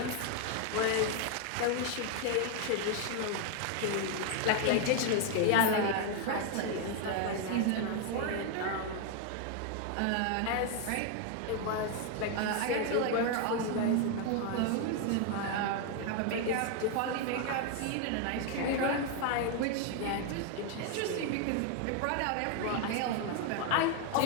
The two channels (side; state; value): both; different; correlation 0.01